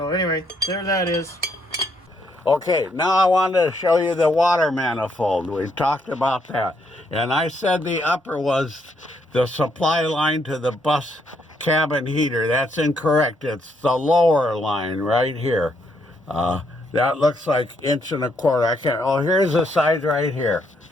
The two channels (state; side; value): normal; both; correlation 0.74